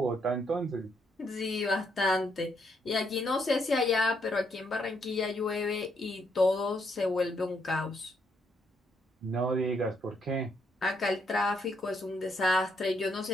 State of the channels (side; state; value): both; normal; correlation 0.75